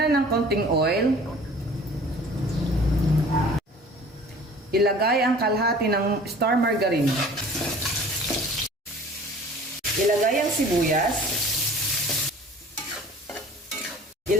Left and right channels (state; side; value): normal; both; correlation 0.47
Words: ng konting oil. Ilagay ang kalahati ng star margarine. Ilagay ang sibuyas.